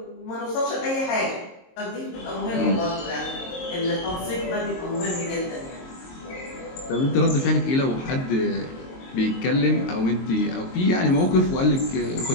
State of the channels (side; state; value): right; late; 22 ms